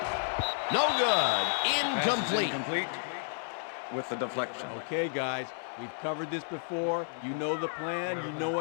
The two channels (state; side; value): silent; right; 57 dB below the other